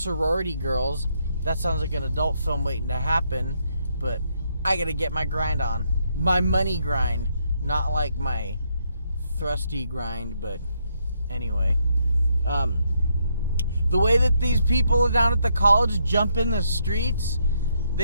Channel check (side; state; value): both; inverted; correlation -0.76